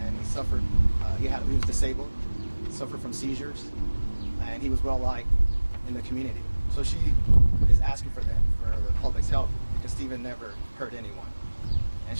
and he suffered, he was disabled, suffered from seizures, and he was well liked in the community. So she is asking for the public's help because Stephen never hurt anyone, and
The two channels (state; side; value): inverted; both; correlation -1.00